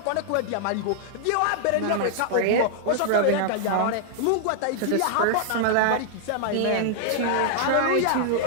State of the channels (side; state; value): both; different; correlation -0.01